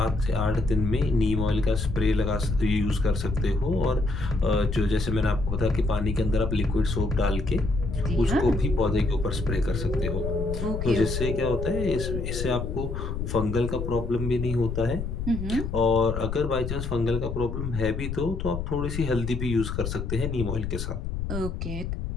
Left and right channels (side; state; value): left; noise; rumble, 4 dB below the sound